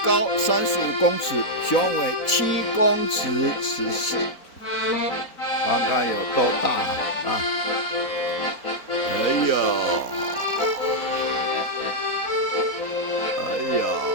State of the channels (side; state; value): right; late; 4.0 ms